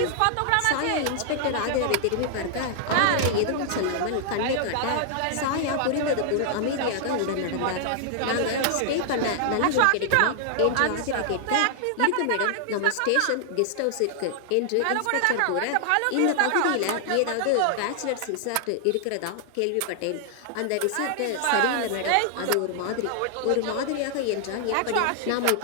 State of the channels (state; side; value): different; both; correlation 0.00